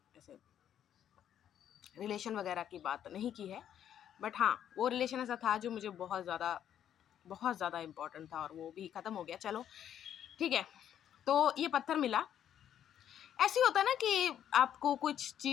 ऐसे रिलेशन वगैरह की बात नहीं की है, बट हाँ वो रिलेशन ऐसा था जो मुझे बहुत ज़्यादा इम्पोर्टेंट था और वो भी ख़त्म हो गया। चलो ठीक है, तो ये पत्थर मिला। ऐसे ही होता है ना कि आपको कुछ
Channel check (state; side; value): quieter; right; 10.0 dB